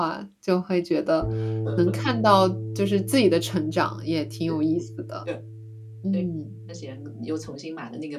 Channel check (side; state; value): both; identical; correlation 1.00